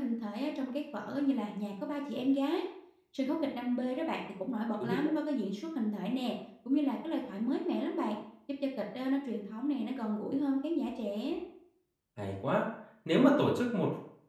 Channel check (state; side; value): identical; both; correlation 1.00